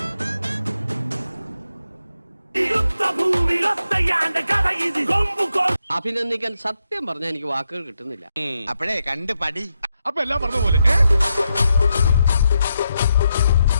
അഭിനന്ദിക്കാൻ സത്യം പറഞ്ഞാൽ എനിക്ക് വാക്കുകൾ കിട്ടുന്നില്ല. അപ്പോഴേ കണ്ട് പടി. അപ്പൊ എല്ലാം പറഞ്ഞ പോലെ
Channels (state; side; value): inverted; both; correlation -0.84